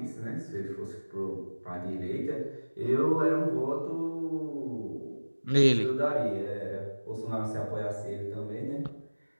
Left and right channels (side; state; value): both; inverted; correlation -1.00